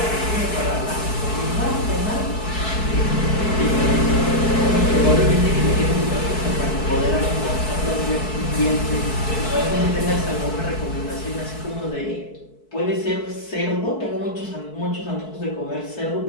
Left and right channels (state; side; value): late; right; 4.6 ms